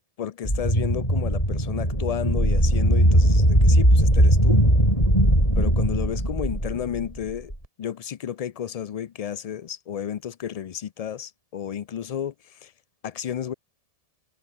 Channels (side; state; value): right; late; 1.7 ms